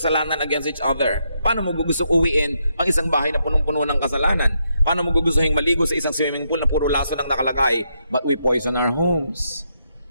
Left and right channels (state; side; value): inverted; both; correlation -0.79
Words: against each other. Paano mo gustong uwiin ang isang bahay na punong-puno ng kasalanan? Paano mo gugustuhin maligo sa isang swimming pool na puro laso lang nakalagay? But we poison our homes.